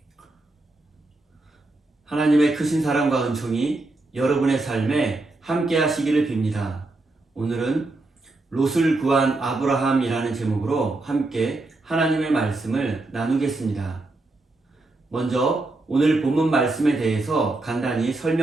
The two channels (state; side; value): quieter; left; 3.0 dB